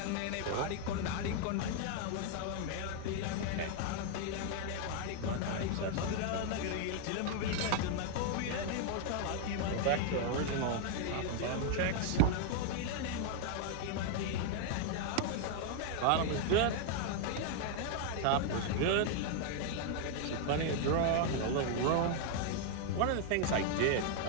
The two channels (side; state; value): both; different; correlation 0.00